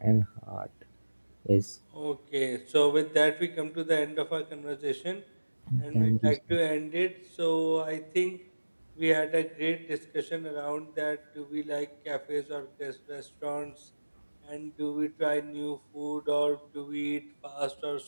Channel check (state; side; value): inverted; both; correlation -1.00